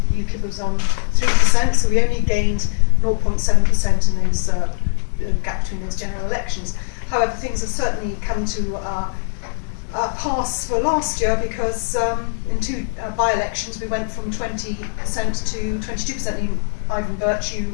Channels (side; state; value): right; silent; digital silence